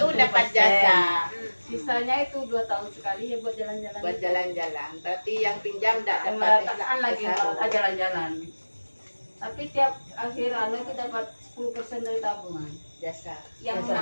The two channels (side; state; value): both; inverted; correlation -1.00